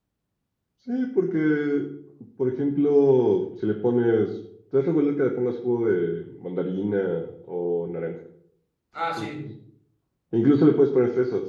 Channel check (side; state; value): both; identical; correlation 1.00